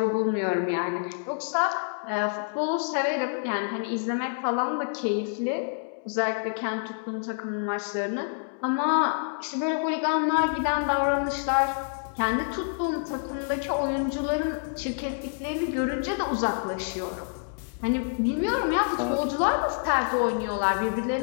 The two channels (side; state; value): right; silent; digital silence